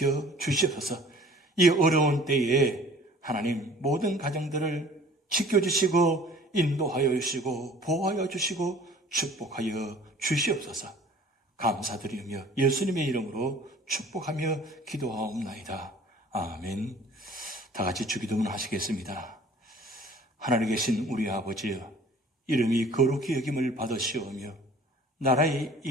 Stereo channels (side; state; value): both; normal; correlation 0.49